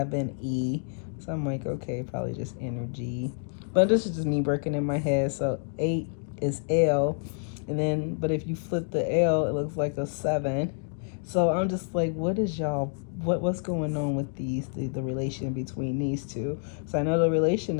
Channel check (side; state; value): right; silent; 59 dB below the other